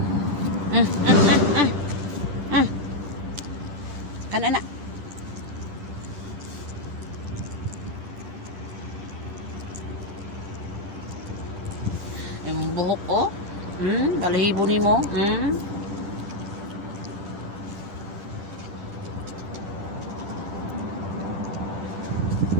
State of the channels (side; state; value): left; late; 10 ms